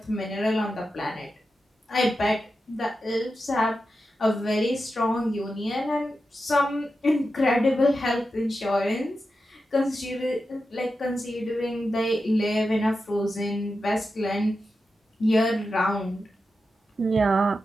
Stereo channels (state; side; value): normal; both; correlation 0.90